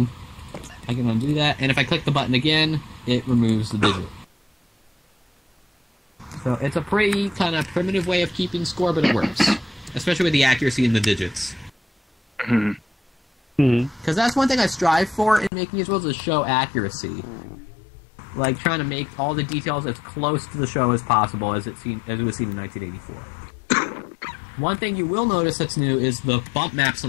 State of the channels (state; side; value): drops out; right; at 15.5 s